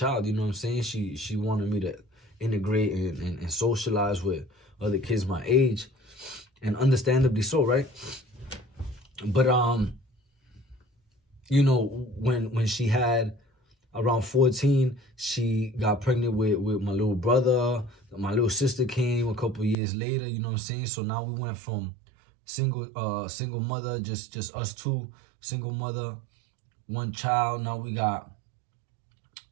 you know what I'm saying? She wanted me to integrate and socialize with other kids my age. And understandably so, right? But, when she had around 14, she got pregnant with my little brother. My little sister came a couple years later, you know what I'm saying? So now we went from single mother, just us two, single mother, one child. Now we got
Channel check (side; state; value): left; drops out; at 19.8 s